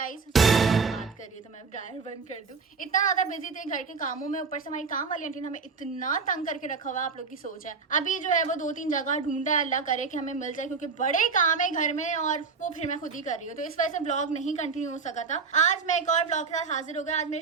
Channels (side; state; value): left; quieter; 4.9 dB